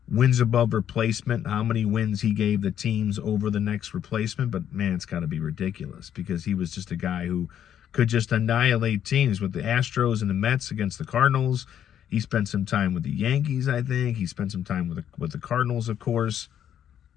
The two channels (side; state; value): right; quieter; 9.9 dB